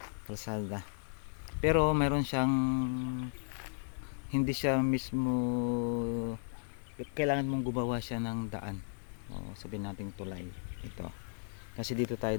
Kalsada. Pero mayroon siyang, hindi siya mismo, kailangan mong gumawa siya ng daan. O sabihin nating tulay. Ito. Kasi dito tayo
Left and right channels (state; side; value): silent; right; digital silence